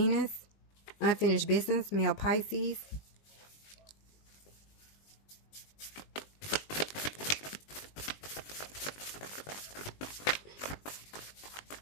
Unfinished business, male Pisces.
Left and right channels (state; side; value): late; right; 20 ms